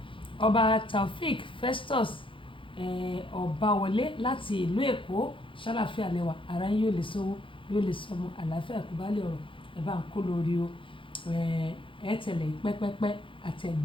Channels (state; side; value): late; right; 0.25 ms